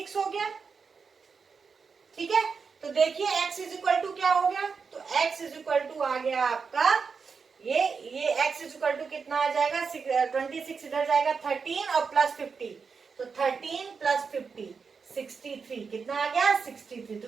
हो गया, ठीक है। तो देखिए x इज इक्वल टू क्या हो गया, तो x इज इक्वल टू आ गया आपका ये x इज इक्वल टू कितना आ जाएगा, 26 इधर जाएगा 13 और प्लस 50, तो 13 प्लस 50 63, कितना आ गया 63। तो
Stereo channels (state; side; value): quieter; left; 5.4 dB